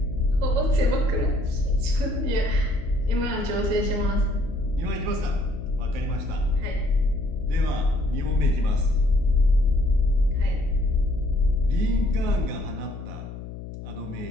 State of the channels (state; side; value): noise; left; hum, 11 dB below the sound